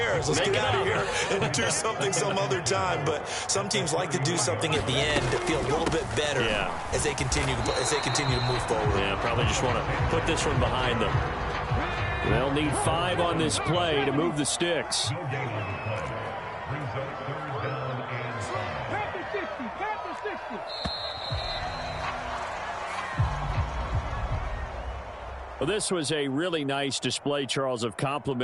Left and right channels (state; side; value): identical; both; correlation 1.00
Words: Let's get out of here and do something some other time." But some teams like to do something at the end to feel a little bit better as they continue to move forward. Yeah, probably just want to put this one behind them. They'll need 5 on this play to move the sticks. Well, this was a really nice display, Charles, of